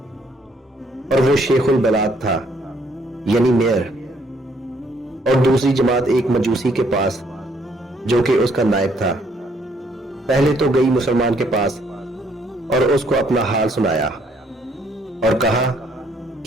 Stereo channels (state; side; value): normal; both; correlation 0.67